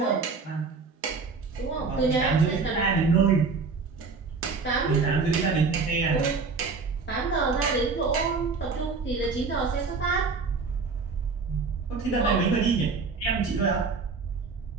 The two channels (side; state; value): left; quieter; 4.6 dB